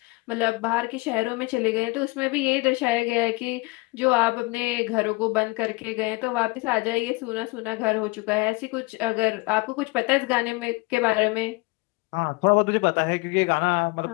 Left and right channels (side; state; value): right; quieter; 25.0 dB